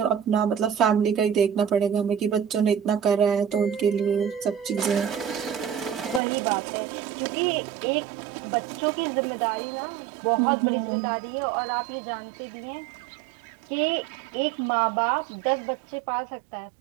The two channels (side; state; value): left; drops out; at 6.2 s